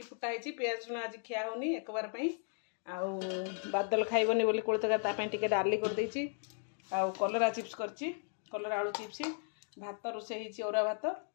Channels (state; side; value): silent; right; 54 dB below the other